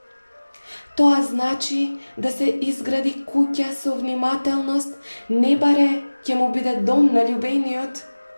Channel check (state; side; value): inverted; both; correlation -1.00